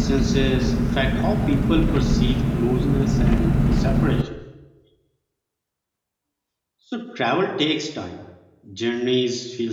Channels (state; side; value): identical; both; correlation 1.00